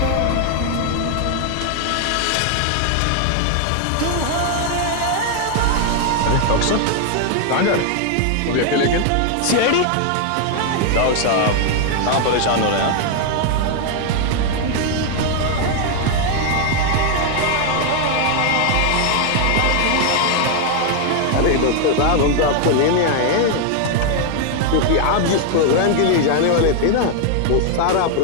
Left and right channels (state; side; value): different; both; correlation 0.00